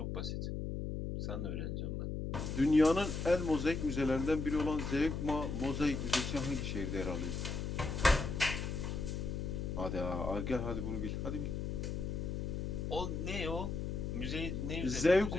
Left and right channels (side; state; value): left; noise; hum, 3 dB below the sound